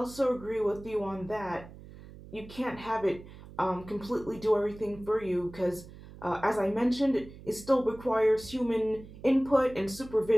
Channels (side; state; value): right; noise; hum, 17 dB below the sound